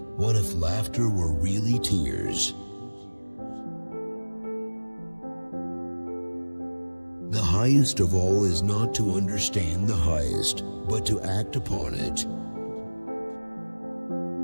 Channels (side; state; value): both; inverted; correlation -1.00